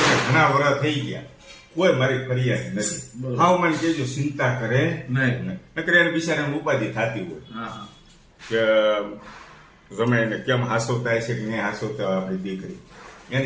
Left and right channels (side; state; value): both; identical; correlation 1.00